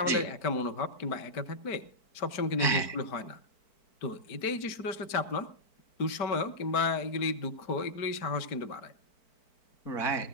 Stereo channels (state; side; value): late; right; 4.5 ms